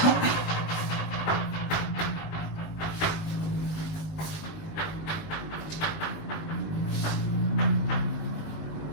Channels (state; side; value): late; right; 19 ms